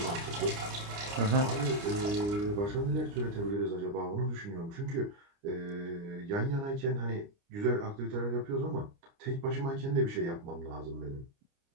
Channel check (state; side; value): late; left; 29 ms